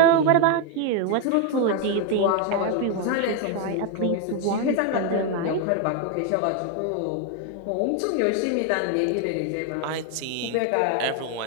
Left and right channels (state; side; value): different; both; correlation 0.01